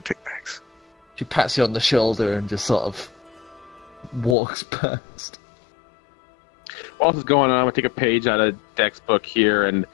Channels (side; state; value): right; drops out; at 4.4 s